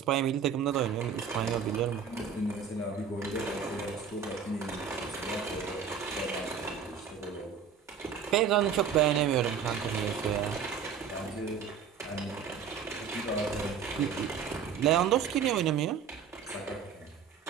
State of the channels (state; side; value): quieter; left; 7.0 dB